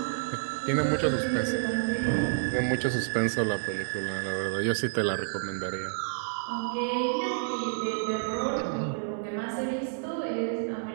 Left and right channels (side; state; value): left; silent; digital silence